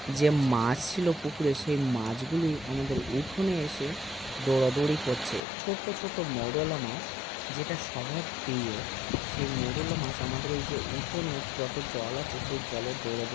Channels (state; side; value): drops out; right; at 5.4 s